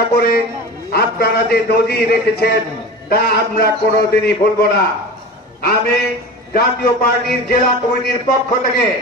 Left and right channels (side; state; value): both; normal; correlation 0.32